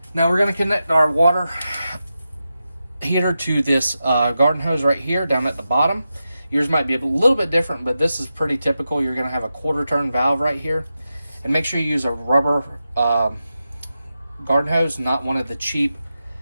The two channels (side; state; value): both; inverted; correlation -0.90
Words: Now we're going to connect our water heater to this garden hose right here down at the bottom. Yours might be a little bit different, but this is pretty typical. You're going to have a quarter turn valve right here. And make sure you use a rubber garden hose, not one of the cheap